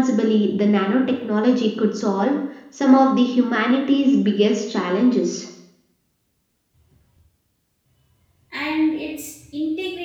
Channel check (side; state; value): both; identical; correlation 1.00